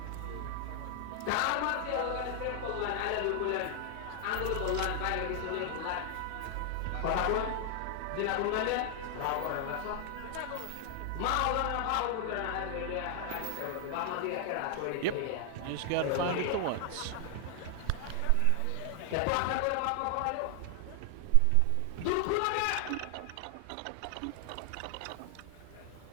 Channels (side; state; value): both; different; correlation 0.00